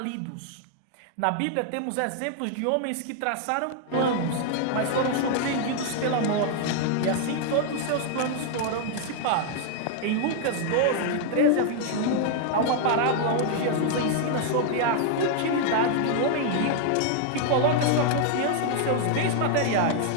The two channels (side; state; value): both; different; correlation 0.00